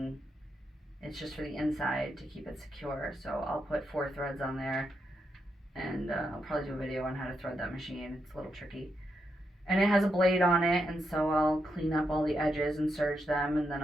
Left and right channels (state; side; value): normal; both; correlation 0.82